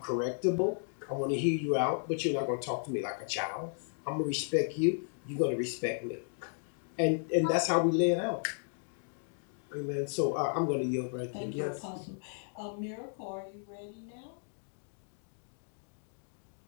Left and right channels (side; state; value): right; silent; digital silence